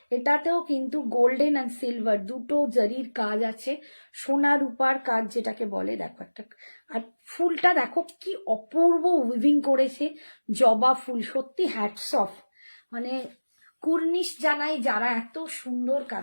এটাতেও কিন্তু গোল্ডেন অ্যান্ড সিলভার দুটো জারির কাজ আছে, সোনা রূপার কাজ যেটাকে বলে, দেখো একটা। আর ফুলটা দেখো কি অপূর্ব উইভিং করেছে, জবা ফুল, সত্যি হ্যাটস অফ। মানে কুর্নিশ জানাই যারা এত সুন্দর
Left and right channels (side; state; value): both; inverted; correlation -1.00